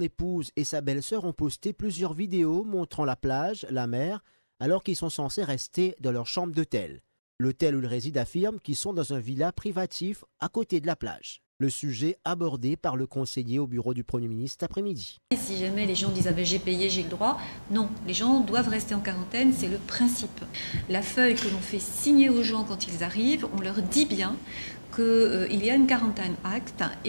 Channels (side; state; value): both; inverted; correlation -1.00